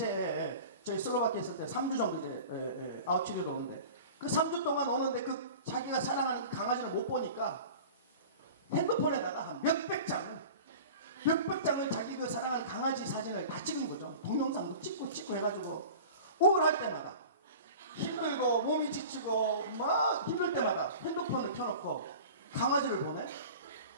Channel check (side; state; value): both; inverted; correlation -0.38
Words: 저희 슬로바키아 있을 때 3주 정도 이제 아웃치료도 오는데 그 3주 동안 오는데 그 자기가 사랑하는 그 강아지를 못 보니까 핸드폰에다가 한 몇백 장을 자기 그 사랑하는 강아지 사진을 다 찍은 거죠. 동영상도 찍고 해가지고 우울할 때마다 힘들고 몸이 지치고 막 힘들 때마다 핸드폰을 켜놓고 강아지를 보내.